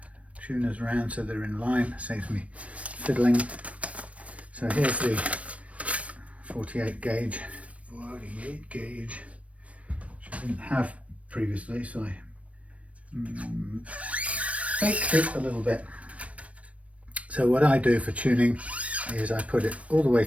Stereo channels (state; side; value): late; left; 0.064 ms